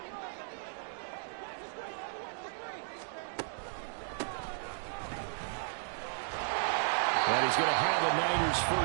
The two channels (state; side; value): silent; left; digital silence